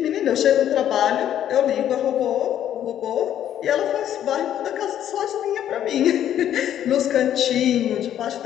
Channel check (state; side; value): quieter; right; 10.8 dB